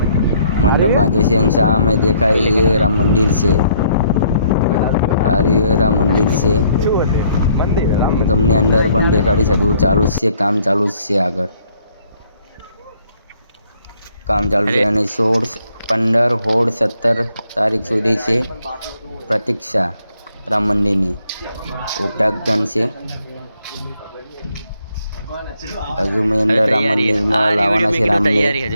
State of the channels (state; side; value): inverted; both; correlation -0.67